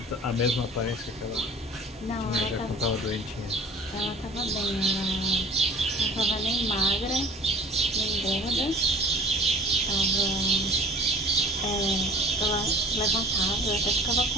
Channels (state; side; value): normal; both; correlation 0.46